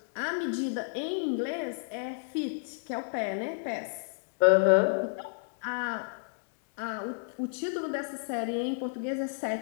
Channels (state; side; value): silent; right; digital silence